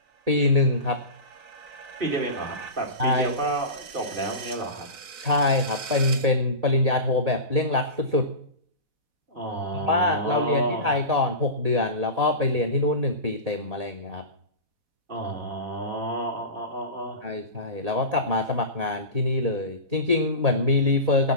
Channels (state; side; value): late; left; 4.1 ms